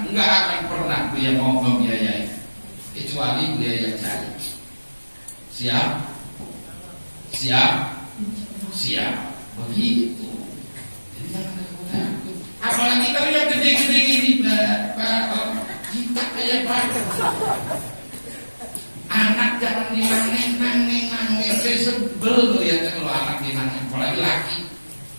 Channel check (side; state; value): both; inverted; correlation -1.00